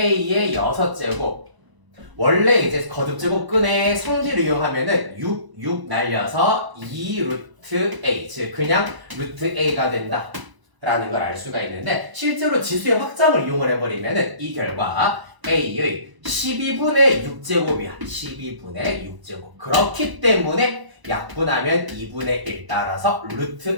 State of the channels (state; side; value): late; left; 1.0 ms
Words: 6제곱 원래 이제 거듭제곱근의 성질을 이용하면은 6 날려서 2 루트 A 즉 그냥 루트 A가 된다 라는 걸 알 수가 있는데 실제로 지수의 확장을 이용을 해버리면은 이 결과 A의 12분의 6제곱이야. 12분의 6제곱. 그렇기 때문에 약분하면 2분의 1 따라서